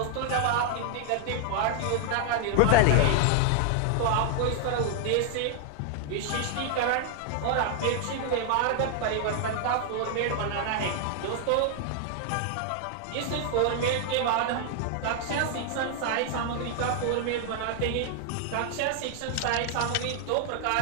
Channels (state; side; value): different; both; correlation 0.00